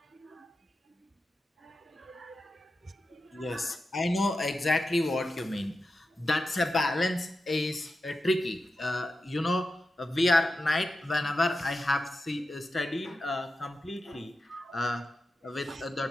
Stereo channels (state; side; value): normal; both; correlation 0.91